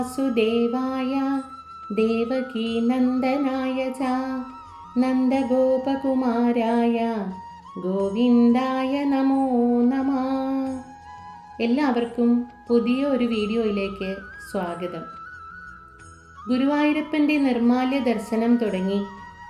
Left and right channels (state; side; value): identical; both; correlation 1.00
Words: ദേവകീ നന്ദനായ ച നന്ദഗോപകുമാരായ ഗോവിന്ദായ നമോ നമഃ. എല്ലാവർക്കും പുതിയ ഒരു വീഡിയോയിലേക്ക് സ്വാഗതം. ഗുരുവായൂരപ്പൻ്റെ നിർമ്മാല്യ ദർശനം തുടങ്ങി